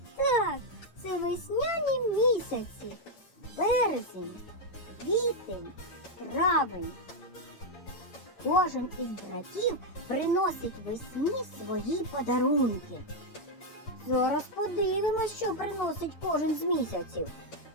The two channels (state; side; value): late; right; 8.9 ms